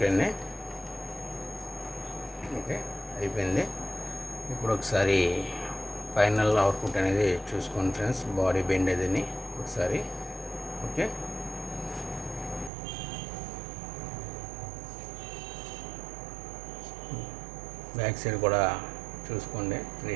అండి, ఓకే అయిపోయింది. ఇప్పుడు ఒకసారి ఫైనల్ అవుట్పుట్ అనేది చూసుకోండి ఫ్రెండ్స్, బాడీ బెండ్ అదిని ఒకసారి. ఓకే, బ్యాక్ సైడ్ కూడా చూసుకోండి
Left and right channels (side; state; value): left; drops out; at 12.7 s